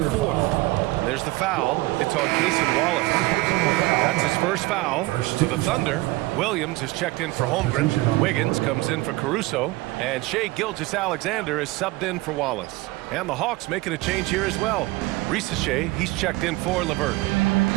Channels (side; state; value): left; quieter; 20.5 dB